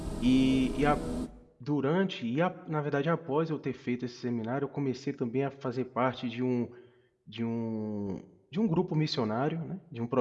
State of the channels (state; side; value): identical; both; correlation 1.00